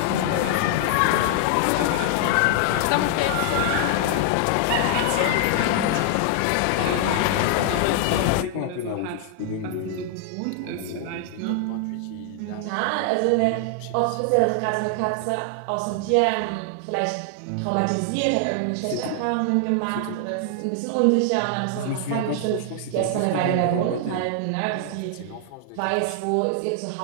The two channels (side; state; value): both; different; correlation 0.00